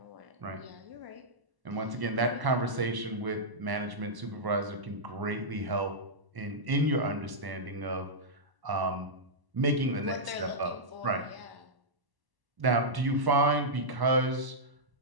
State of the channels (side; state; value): left; late; 1.0 ms